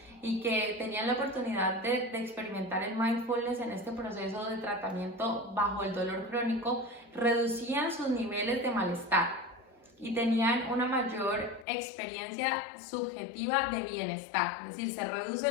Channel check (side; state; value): right; drops out; at 11.7 s